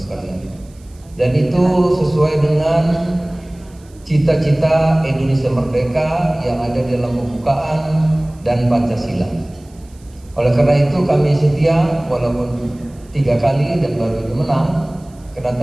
sekalian. Dan itu sesuai dengan cita-cita Indonesia Merdeka yang ada di dalam pembukaan dan Pancasila. Oleh karena itu kami setia walaupun 3 kali dan baru ini menang. Karena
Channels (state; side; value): noise; right; hiss, 29 dB below the sound